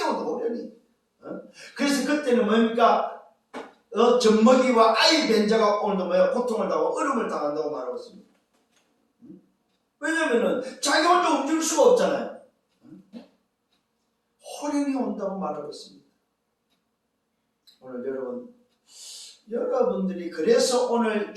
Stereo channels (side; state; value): both; identical; correlation 1.00